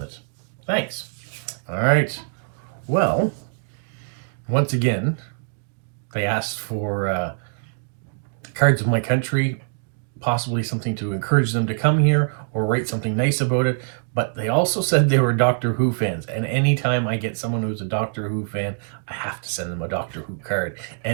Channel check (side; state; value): left; silent; digital silence